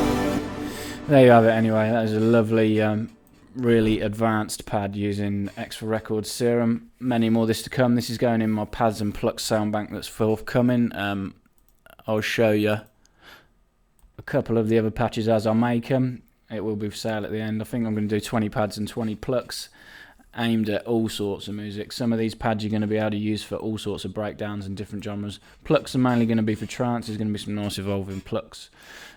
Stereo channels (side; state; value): both; identical; correlation 1.00